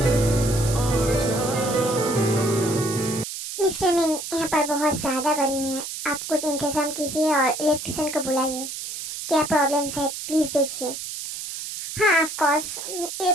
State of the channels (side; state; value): right; noise; hiss, 8 dB below the sound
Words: और चाहूँ तो क्या। मिस्टर मिन, यहाँ पर बहुत ज्यादा गर्मी है, आप कुछ इंतजाम कीजिए और इलेक्ट्रिशियन को बुलाइए। क्या प्रॉब्लम्स है प्लीज देखिए। हाँ ऑफ कोर्स, ये